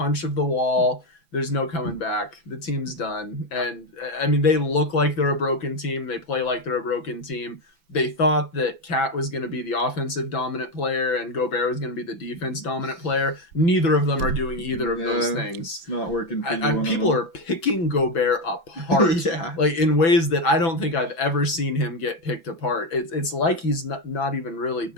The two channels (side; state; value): right; late; 6.0 ms